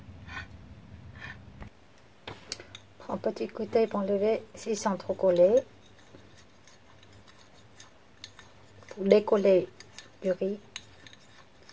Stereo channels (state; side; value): identical; both; correlation 1.00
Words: Prends un petit côté pour enlever s'ils sont trop collés. Pour décoller du riz.